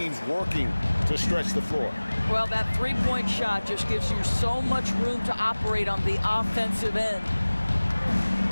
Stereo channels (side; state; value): both; inverted; correlation -1.00